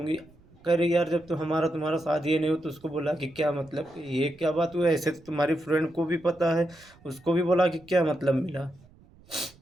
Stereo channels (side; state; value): right; noise; rumble, 27 dB below the sound